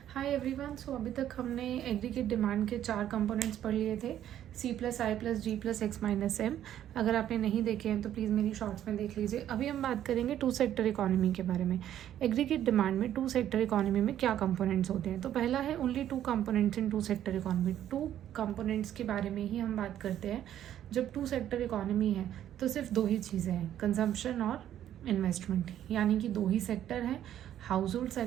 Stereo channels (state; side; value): quieter; left; 11.2 dB